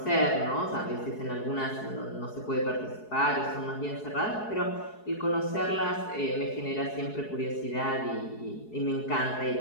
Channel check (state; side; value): late; right; 4.7 ms